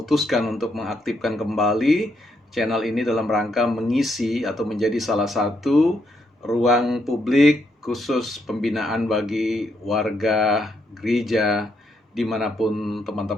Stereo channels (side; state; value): both; normal; correlation 0.77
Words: untuk mengaktifkan kembali channel ini dalam rangka mengisi atau menjadi salah satu ruang publik khusus pembinaan bagi warga gereja dimanapun